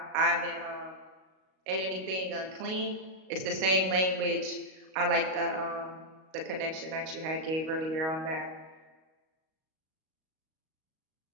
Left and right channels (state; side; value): late; left; 38 ms